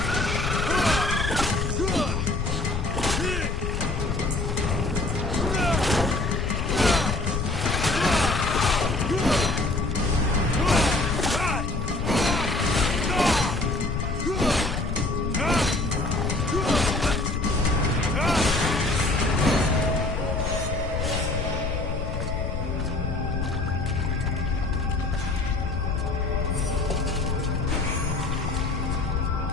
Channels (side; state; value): left; noise; rumble, 2 dB below the sound